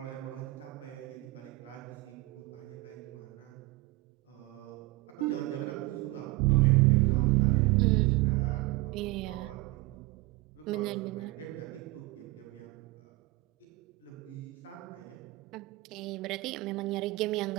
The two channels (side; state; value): left; quieter; 20.6 dB